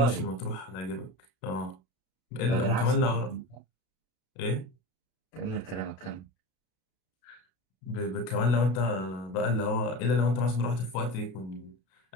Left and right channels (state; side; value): late; right; 32 ms